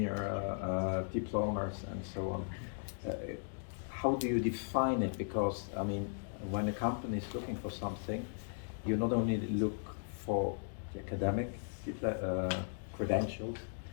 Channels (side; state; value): right; silent; digital silence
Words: diplomas, and so on. How do you define it? Because, I mean, when a company is looking for something, you not only look for the academic credentials,